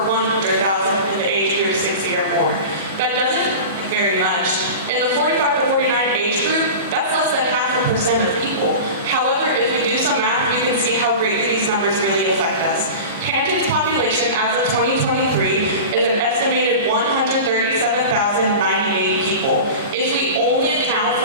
100,000 in the age group 60 or more. That doesn't very much. In the 45 to 49 age group, that's less than 0.5% of people. However, if we do some math, we can see how greatly these numbers really affect us. Hampton's population as of 2023 is an estimated 137,098 people. If we only account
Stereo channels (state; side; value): inverted; both; correlation -0.31